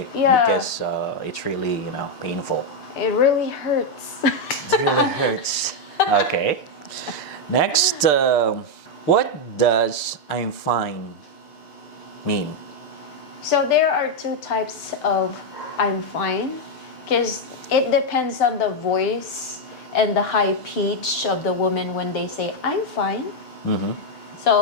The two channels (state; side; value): late; right; 6.8 ms